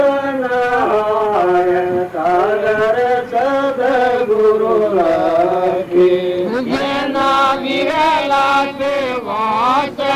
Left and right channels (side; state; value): both; identical; correlation 1.00